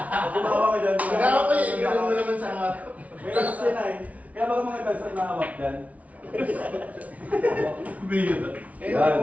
gumawa ka dyan. Nagawa ko yung gano'n mo naman sa harap. May lakas yan ay. Kaya baka mga dancer na hawak dyan. Kaya Yan.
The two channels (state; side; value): late; left; 0.069 ms